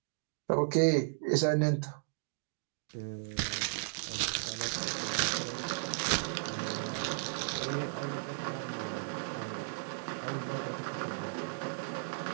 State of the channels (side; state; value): left; silent; digital silence